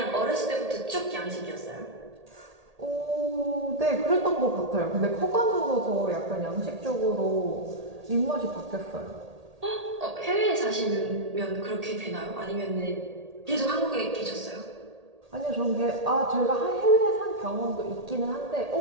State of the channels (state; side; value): late; left; 1.8 ms